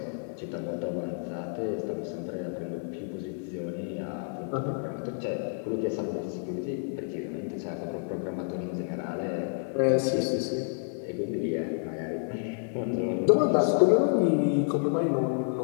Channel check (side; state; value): right; silent; 58 dB below the other